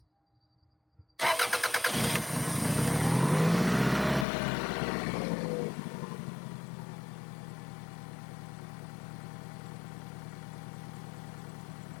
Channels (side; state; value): right; drops out; at 4.2 s